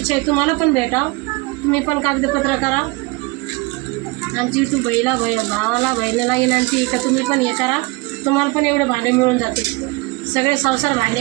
आहे तुम्हाला पण भेटा. तुम्ही पण कागदपत्र करा. आमची तू भावाला बहिणीला विनंती आहे का तुम्ही पण हे करा. तुम्हाला पण एवढे भांडे मिळून जाते. सगळे संसार भांडे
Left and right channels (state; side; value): quieter; left; 24.8 dB